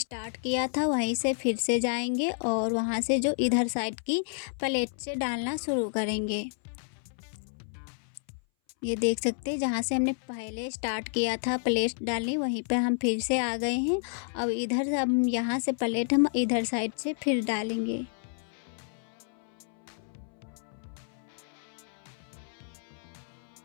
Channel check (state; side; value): silent; right; 58 dB below the other